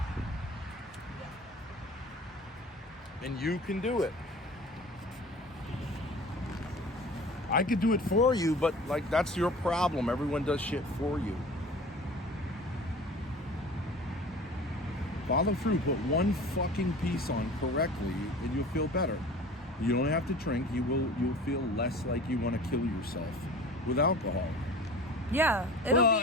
And you can do it. I could do it for you, but like that's your problem. Everyone does shit for you. Follow through, put one fucking piece on correctly and you'll feel better. You don't have to drink, you'll feel less like you want to kill yourself with alcohol. Yeah, it'll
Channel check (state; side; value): normal; both; correlation 0.41